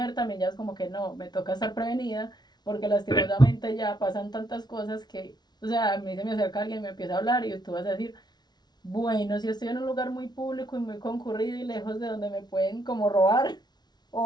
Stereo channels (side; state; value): right; late; 0.20 ms